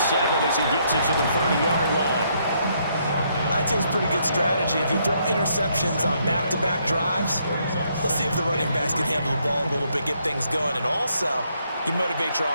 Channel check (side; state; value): both; inverted; correlation -0.73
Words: as he gets it to the 30-yard line. I'd say it's pretty good strategy. If you throw interceptions on back-to-back drives, let's see if the running backs can handle the ball a little bit, get things going, and also you motivate your